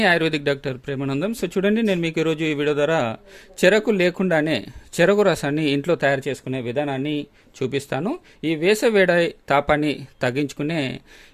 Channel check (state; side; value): identical; both; correlation 1.00